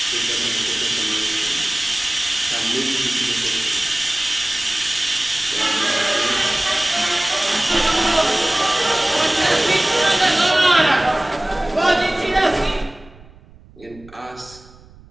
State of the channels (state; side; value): noise; right; rumble, 24 dB below the sound